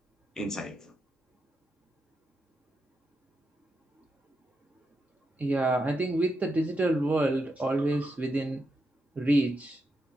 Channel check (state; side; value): normal; both; correlation 0.85